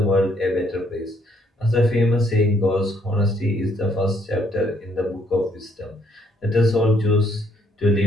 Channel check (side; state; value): both; normal; correlation 0.68